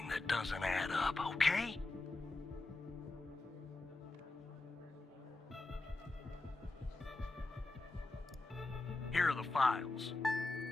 that doesn't add up, okay? Here are the files.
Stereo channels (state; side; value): quieter; right; 3.1 dB